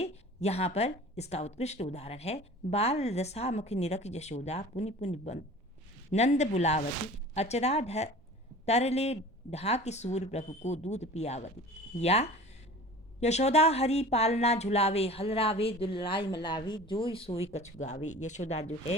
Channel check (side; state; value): both; normal; correlation 0.41